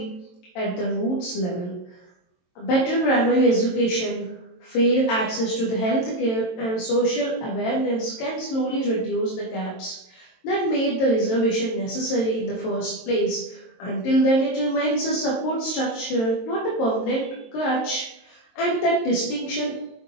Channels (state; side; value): late; right; 22 ms